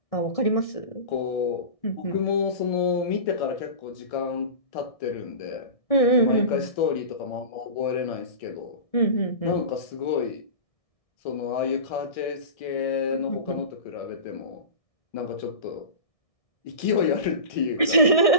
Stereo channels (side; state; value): right; late; 1.6 ms